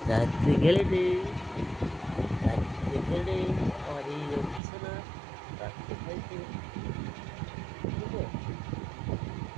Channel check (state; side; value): drops out; left; at 4.6 s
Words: রাত্রে খেলেটে, রাত্রে খেলে, আমার এই রকি সোনা রাত্রে খাইতে, বুঝছো